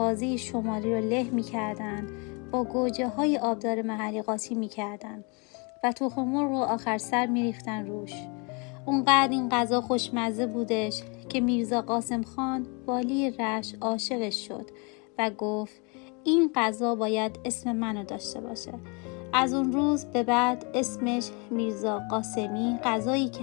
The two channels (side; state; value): right; quieter; 32.2 dB